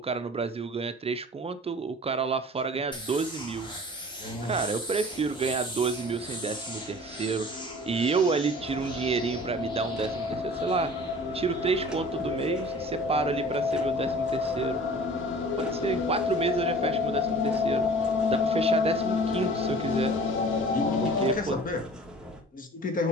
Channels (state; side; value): normal; both; correlation 0.45